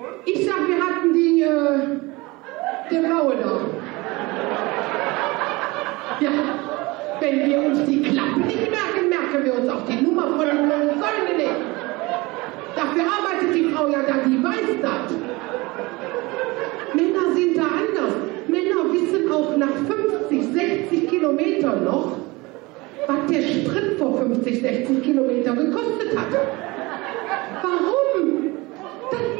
Ich sag, wir hatten der Blaue da. Ja, wenn wir uns die Klappe nicht merken, merken wir uns auch die Nummer von den Säulen nicht. Dafür arbeitet die Frau ja da, die weiß das. Männer sind da anders. Männer wissen auch nach 50, 60 Kilometern noch, was der Sprit vor 50, 60 Kilometern gekostet hat. Warum? Das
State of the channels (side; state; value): left; quieter; 23.2 dB